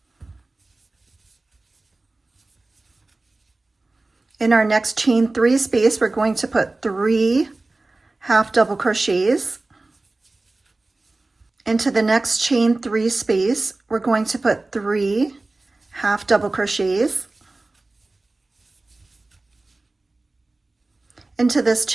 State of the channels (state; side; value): quieter; left; 3.1 dB